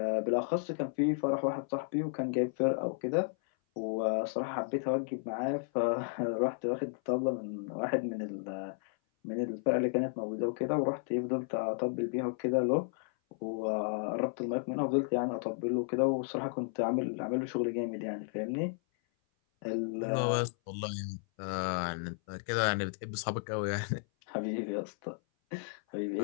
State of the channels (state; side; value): silent; right; 55 dB below the other